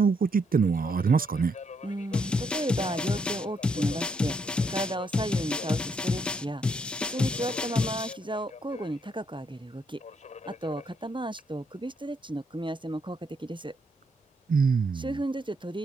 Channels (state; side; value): normal; both; correlation 0.75